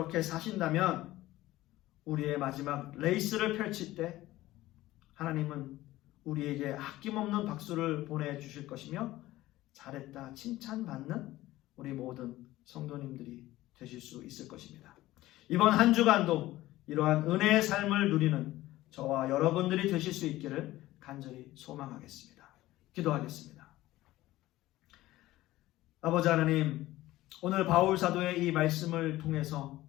사신다면 우리의 마지막 레이스를 펼칠 때 하나님은 우리에게 아낌없는 박수를 보내주실 것이며 잘했다 칭찬받는 우리 모든 성도님들이 되실 수 있을 것입니다. 이번 한 주간도 이러한 은혜의 삶을 누리는 저와 여러분들이 되실 수 있기를 간절히 소망하겠습니다. 기도하겠습니다. 아버지 하나님, 오늘 바울 사도의 이 말씀을 통해서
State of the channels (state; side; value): quieter; right; 16.6 dB